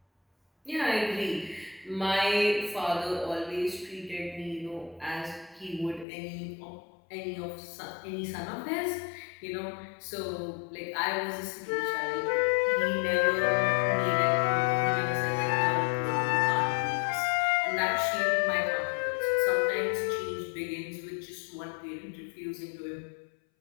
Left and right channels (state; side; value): drops out; right; at 6.1 s